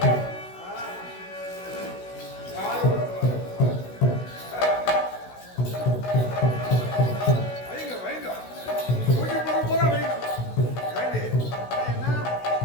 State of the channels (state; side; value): late; right; 16 ms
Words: வைங்க, வைங்க. மூஞ்சி பொருள் பூரா வைங்க. ஏண்டி? என்ன